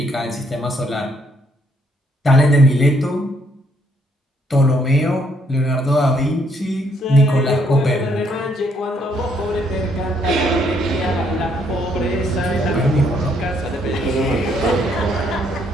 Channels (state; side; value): normal; both; correlation 0.70